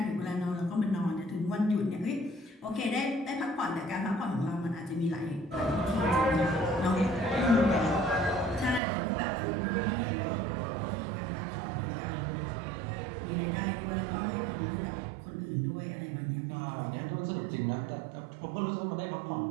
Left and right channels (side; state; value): left; drops out; at 8.8 s